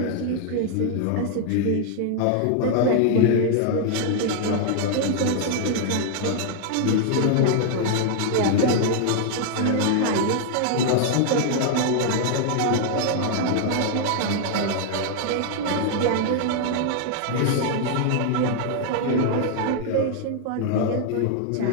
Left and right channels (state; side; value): different; both; correlation 0.00